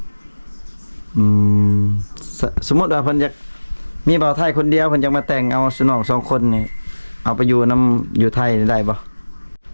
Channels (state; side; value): inverted; both; correlation -1.00